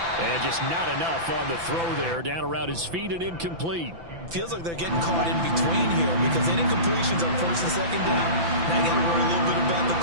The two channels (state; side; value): late; left; 5.9 ms